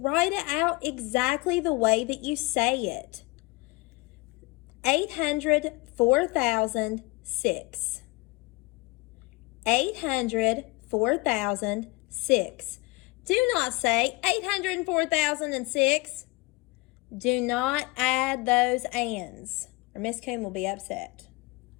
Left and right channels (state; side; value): quieter; right; 23.7 dB